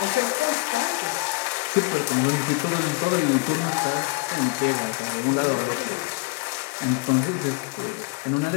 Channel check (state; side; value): quieter; right; 25.0 dB